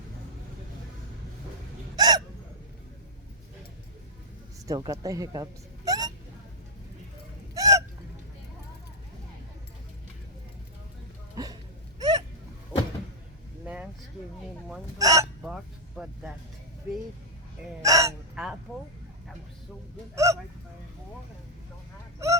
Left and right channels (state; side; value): normal; both; correlation -0.08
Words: Still got the hiccups. Nance gave me one of those box, but that big apple, that was so good. I tried to find more and we don't